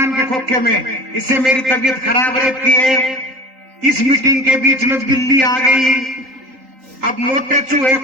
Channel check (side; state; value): left; late; 3.8 ms